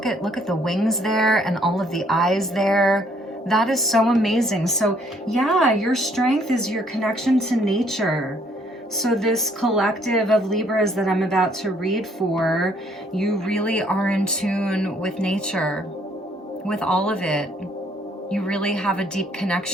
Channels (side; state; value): both; normal; correlation 0.65